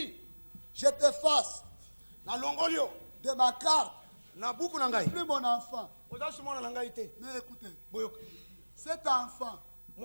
Je t'efface de ma carte. Plus mon enfant. Mais écoutez, cet enfant,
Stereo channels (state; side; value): inverted; both; correlation -1.00